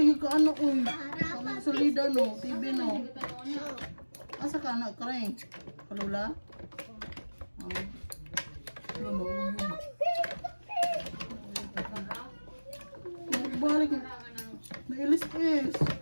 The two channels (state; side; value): inverted; both; correlation -1.00